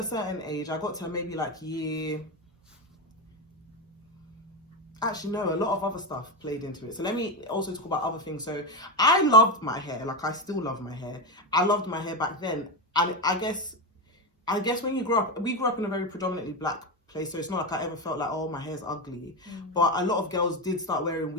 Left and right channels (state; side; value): normal; both; correlation 0.13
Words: certain age. I got to maybe like year. Actually, no, a lot of other stuff played into it. So let me also talk about other things. So I loved my hair. Like, I still love my hair. I loved my hair back then. And I guess when you grow up, we grew up in a very predominantly black place. So it's not like I ever felt like, oh, my hair's ugly. But a lot of girls did start wearing